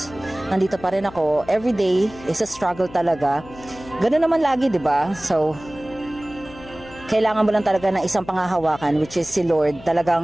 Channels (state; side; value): noise; left; hum, 18 dB below the sound